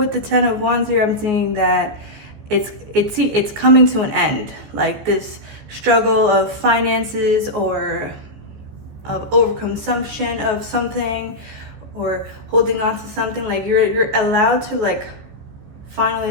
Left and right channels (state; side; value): late; left; 15 ms